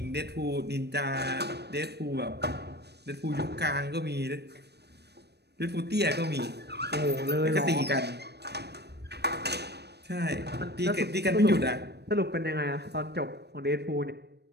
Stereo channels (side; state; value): left; late; 0.48 ms